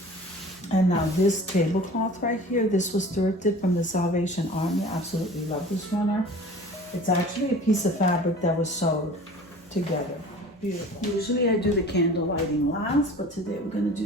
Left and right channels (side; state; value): both; normal; correlation 0.43